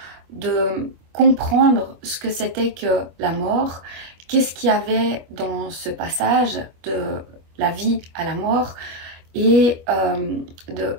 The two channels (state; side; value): late; left; 25 ms